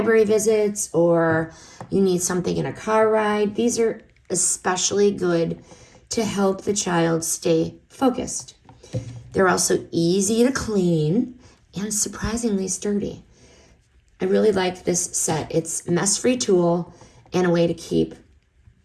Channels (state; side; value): identical; both; correlation 1.00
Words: visits or you need something in a car ride, these are especially good to help the child stay focused. They're also easy to clean and surprisingly sturdy. I really like this set. It's a mess-free tool and a way to keep